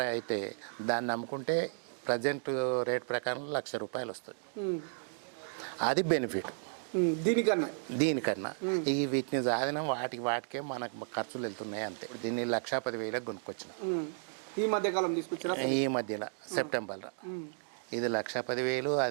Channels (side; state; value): left; silent; digital silence